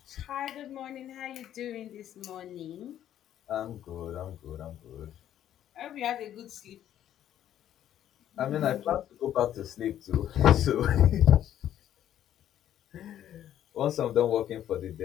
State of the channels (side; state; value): right; quieter; 11.2 dB